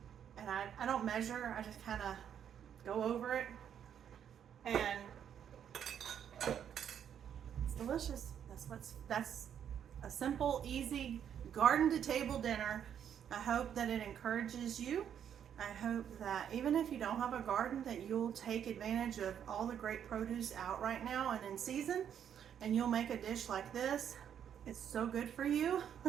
And I don't measure, I just kind of go over it. And it's delicious. That's a simple, easy garden to table dinner. I hope that it encourages you. I hope that even if you don't have a garden, that you'll take advantage of all the great produce out right now and in season, and you'll make a dish like this. It's so good for you.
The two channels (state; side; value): quieter; left; 9.0 dB